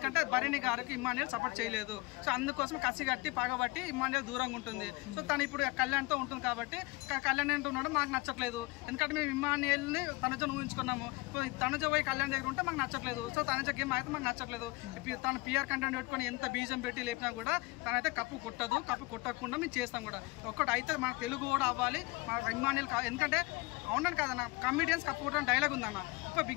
భరణి గారికి ఇమ్మానియల్ సపోర్ట్ చేయలేదు. సో అందుకోసం కసి కట్టి పగబట్టి ఇమ్మానియల్ దూరంగా ఉంటుంది. సో తను ఇప్పుడు కళ్యాణ్తో ఉంటుంది కాబట్టి కళ్యాణ్ అంటున్నాడు మాకు నచ్చట్లేదు. ఎందుకంటే మేము ఇమ్మానియల్ని తనుజను ఊహించుకున్నాము. తనుజ పోయి కళ్యాణ్ దగ్గర ఉంటే మాకు నచ్చట్లేదు. సో తనుజ గేమ్ అయితే మాకు నచ్చట్లేదు. తను పిఆర్ కంటెంట్ పెట్టుకొని ఎంత బీజం పెట్టి లేపినా కూడా తనైతే కప్పు కొట్టదు. కప్పు కొట్టకుండా మేము చేస్తాం కూడా. ఒక్కటి అయితే మన తెలుగు కూడా అవ్వాలి, మన ఇమ్మానియల్. ఎందుకంటే అవునని కాదన్న, కమెడియన్స్ కప్పు కొట్టడం డైలాగ్ ఉందన్న. ఇప్పుడు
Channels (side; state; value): right; quieter; 24.2 dB